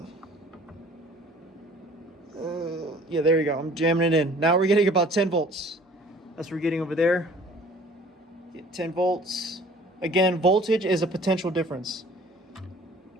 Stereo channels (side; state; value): both; normal; correlation 0.51